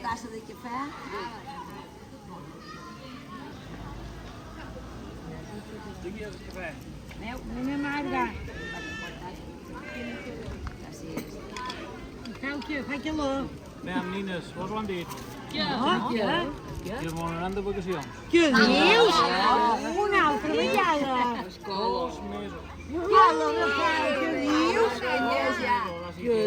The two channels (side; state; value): both; identical; correlation 1.00